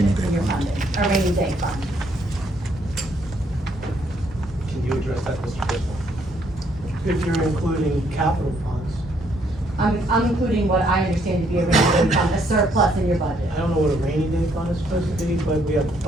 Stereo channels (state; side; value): normal; both; correlation 0.70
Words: in your funding, a rainy day fund. Can you address that, Mr. Bisbal? If you're including capital funds, I'm including what I understand to be a rainy day fund, a surplus in your budget. I don't know what a rainy day fund is supposed to be, but we have a